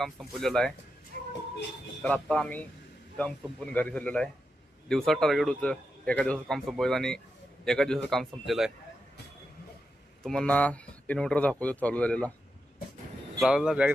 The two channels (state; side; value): normal; both; correlation 0.87